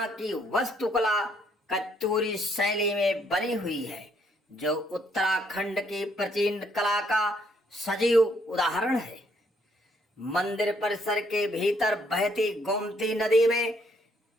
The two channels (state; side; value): normal; both; correlation 0.69